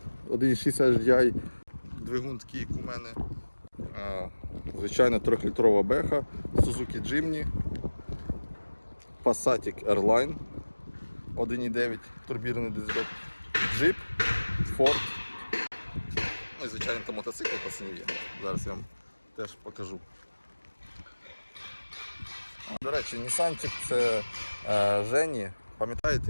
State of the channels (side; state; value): both; inverted; correlation -1.00